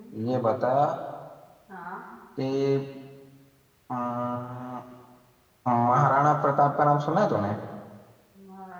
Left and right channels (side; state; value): both; identical; correlation 1.00